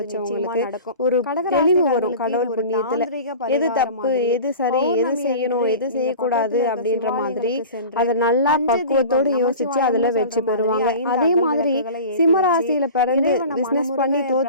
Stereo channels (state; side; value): inverted; both; correlation -0.37